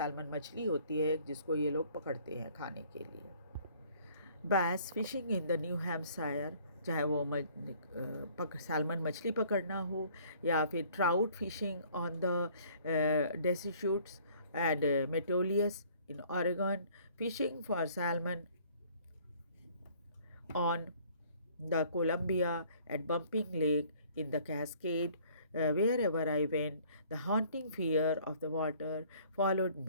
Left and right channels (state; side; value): inverted; both; correlation -0.57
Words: मछली होती है जिसको ये लोग पकड़ते हैं खाने के लिए। Bass fishing in the New Hampshire, चाहे वो सैल्मन मछली पकड़ना हो या फिर trout fishing on the Deschutes and Metolius in Oregon, fishing for salmon on the Columbia, at Bumping Lake, in the Cascade, wherever I went, the haunting fear of the water followed